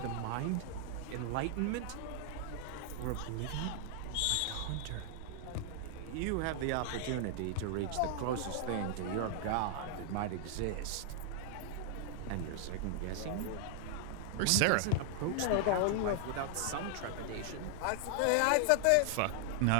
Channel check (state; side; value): different; both; correlation 0.00